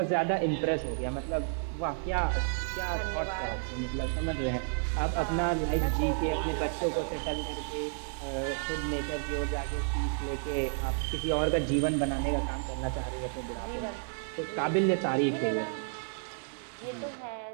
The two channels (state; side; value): silent; left; 57 dB below the other